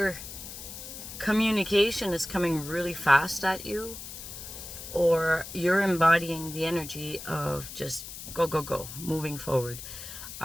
communication is coming really fast at you, or you're embodying the energy of just go, moving forward.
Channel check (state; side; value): noise; left; hiss, 11 dB below the sound